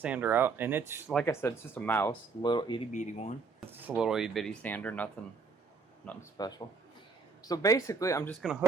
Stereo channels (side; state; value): left; quieter; 4.7 dB